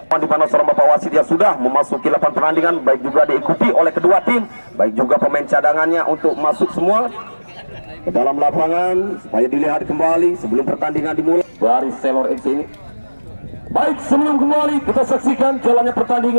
di mana seorang bapak wasit yang sudah memasuki lapangan pertandingan, baik juga diikuti oleh kedua tim, baik juga pemain cadangannya untuk masuk semua ke dalam lapangan supaya dilihat kembali sebelum pertandingan dimulai. Baris Selor FC ini. Baik, sebelum kembali kita saksikan jalannya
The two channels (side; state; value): both; inverted; correlation -1.00